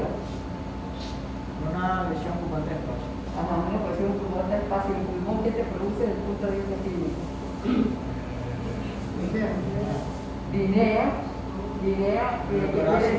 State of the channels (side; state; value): both; identical; correlation 1.00